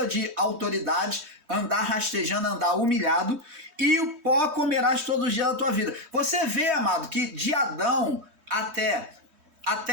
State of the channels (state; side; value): late; left; 3.2 ms